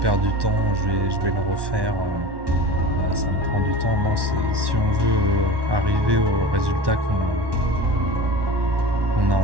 du temps, je vais le refaire, ça me prend du temps. Non, si on veut arriver au résultat qu'on a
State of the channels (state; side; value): late; left; 1.1 ms